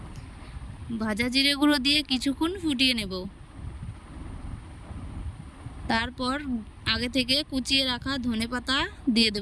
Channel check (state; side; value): identical; both; correlation 1.00